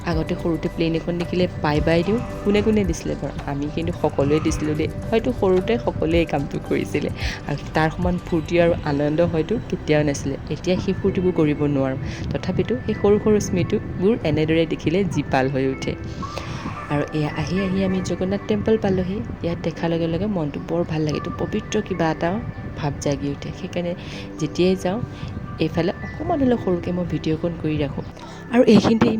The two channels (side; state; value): both; identical; correlation 1.00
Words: আগতে সৰুতে প্লেন এখন দেখিলে বাই বাই দিওঁ, কোনে কোনে দিছিলে বাৰু? আমি কিন্তু সকলোৱে দিছিলোঁ দেই, হয়তো সৰুতে সকলোৱে এই কামটো কৰিছিলে। আৰু তাৰ সমান ফূৰ্তি আৰু আনন্দ হয়তো কেতিয়াও নাছিলে। এতিয়া সেই ফূৰ্তিবোৰ কৰিব নোৱাৰোঁ, তথাপিতো সেই সৰু সৰু স্মৃতিবোৰ এনেদৰে দেখিলে জীপাল হৈ উঠে। আৰু এয়া আহি আমি জগন্নাথ টেম্পল পালোঁহি। ইয়াত দেখাৰ লগে লগে মনটো বৰ ভাল লাগে, এইটো পবিত্ৰ কিবা এটা ভাৱ জাগি উঠে। সেইকাৰণে যেতিয়াই যাওঁ এইফালে অকণমান হ'লেও সৰুকৈ মই ভিডিঅ'কণ কৰি ৰাখোঁ। আৰু এইখিনিতে